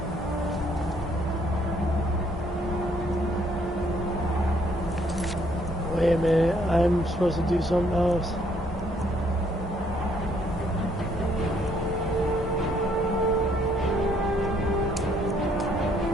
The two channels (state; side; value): normal; both; correlation 0.67